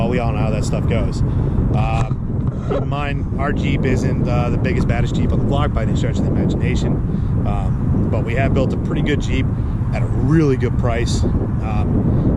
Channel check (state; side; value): identical; both; correlation 1.00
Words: we all know how that stuff goes. Keep in mind, our Jeep isn't the biggest, baddest Jeep on the block by any stretch of the imagination, but we have built a pretty good Jeep at a really good price.